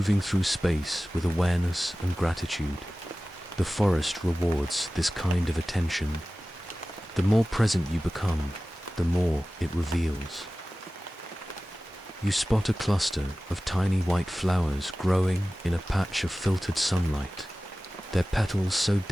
through space with awareness and gratitude. The forest rewards this kind of attention. The more present you become, the more it reveals. You spot a cluster of tiny white flowers growing in a patch of filtered sunlight, their petals so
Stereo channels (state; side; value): normal; both; correlation 0.97